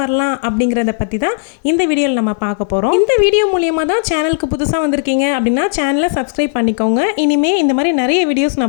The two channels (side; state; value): right; silent; digital silence